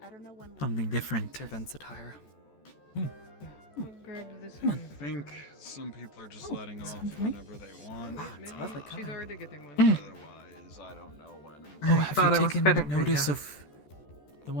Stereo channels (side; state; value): right; late; 14 ms